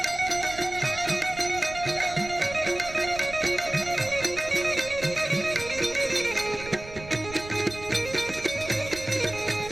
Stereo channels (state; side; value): noise; right; rumble, 15 dB below the sound